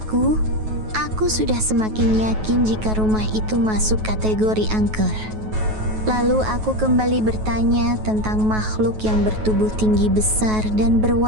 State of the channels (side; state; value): left; late; 9.3 ms